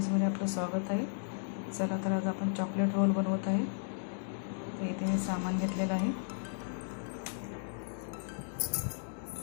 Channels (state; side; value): silent; right; digital silence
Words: आपलं स्वागत आहे. चला तर आज आपण चॉकलेट रोल बनवत आहे. तर इथे मी सामान घेतलेलं आहे.